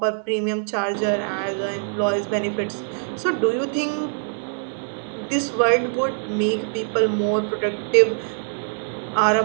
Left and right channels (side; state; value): left; silent; digital silence